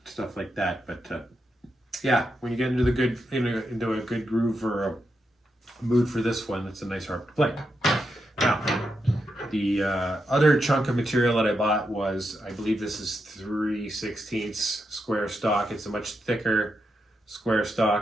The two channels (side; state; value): both; normal; correlation 0.84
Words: stuff like that. But yeah, when you get into a good groove or a mood for this one, it's a nice harp to play. Now, the other chunk of material that I bought was, I believe this is 3/16 square stock. It's a much thicker square